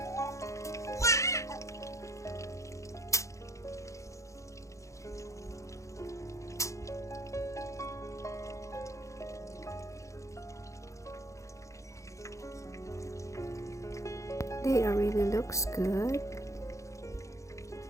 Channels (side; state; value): right; late; 0.15 ms